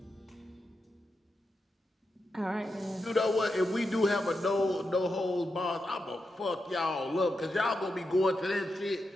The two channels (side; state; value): both; normal; correlation 0.87